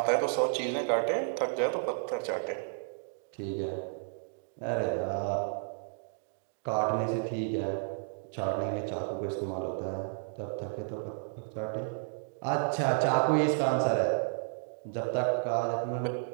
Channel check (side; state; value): left; silent; digital silence